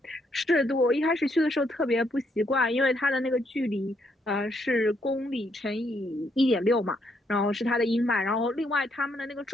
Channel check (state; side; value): normal; both; correlation 0.74